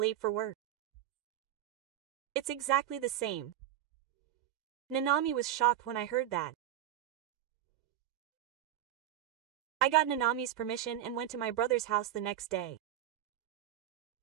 for work. It's exactly the same. Nanami was shocked when I heard that. I got Nanami's permission and went to my brother's house the next day.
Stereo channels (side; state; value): left; quieter; 12.0 dB